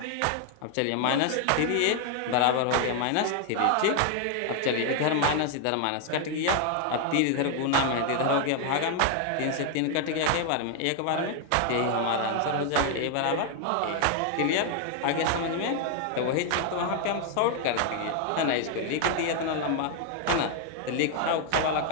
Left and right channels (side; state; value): both; different; correlation 0.00